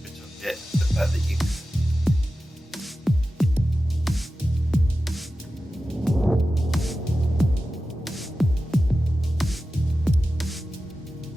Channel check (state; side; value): normal; both; correlation 0.93